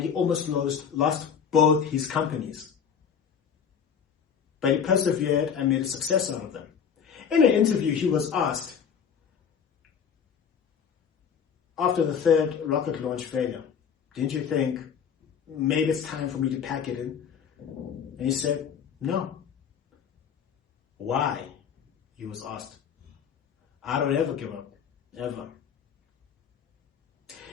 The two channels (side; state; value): right; quieter; 7.3 dB